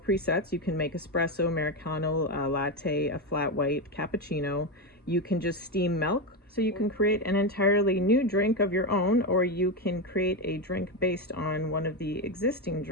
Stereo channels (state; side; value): normal; both; correlation 0.12